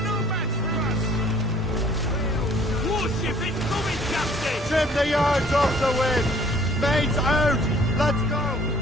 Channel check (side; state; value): both; normal; correlation 0.56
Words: Warship incoming, Captain! Trim the yards off the wind! Mains out! Let's go!